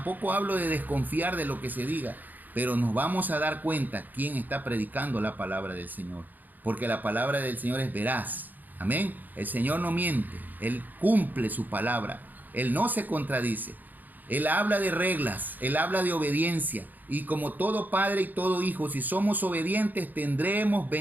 hablo de desconfiar de lo que se diga, pero nos vamos a dar cuenta quién está predicando la palabra del Señor. Porque la palabra del Señor es veraz. Amén. El Señor no miente. Él cumple su palabra. Él no se contradice. Él habla de reglas, Él habla de obediencia. Y como todo padre y todo hijo, si somos obedientes, tendremos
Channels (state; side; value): late; left; 0.085 ms